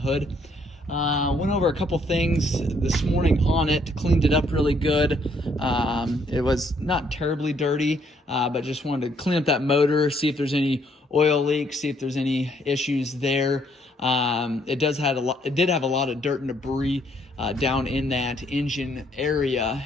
Went over a couple things this morning on it, cleaned it up really good. It was not terribly dirty, but just wanted to clean up that motor, see if there's any oil leaks, see if there's any issues there. It did have a lot of dirt and debris down in that engine area,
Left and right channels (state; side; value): normal; both; correlation 0.68